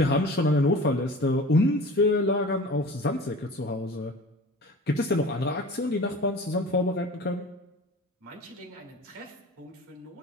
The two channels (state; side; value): normal; both; correlation 0.39